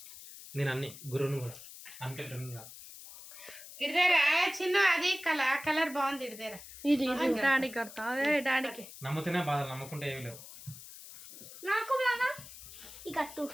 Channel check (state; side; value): noise; left; hiss, 15 dB below the sound